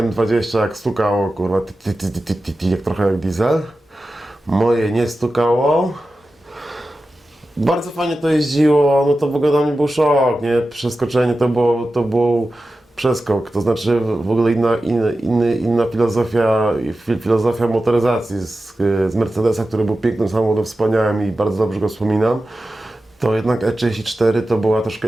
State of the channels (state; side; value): normal; both; correlation 0.93